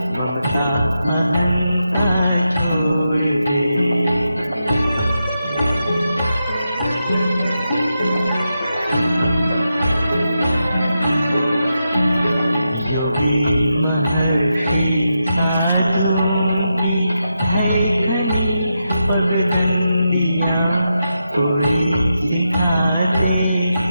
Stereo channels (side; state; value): both; inverted; correlation -0.87